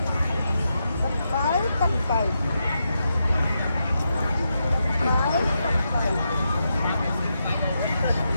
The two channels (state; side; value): inverted; both; correlation -0.85